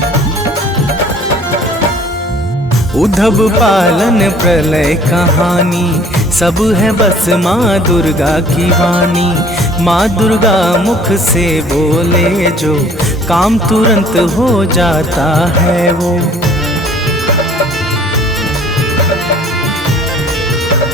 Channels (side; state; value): both; normal; correlation 0.54